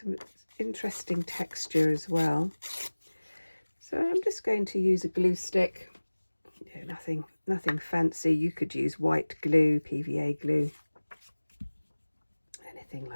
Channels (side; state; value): both; inverted; correlation -1.00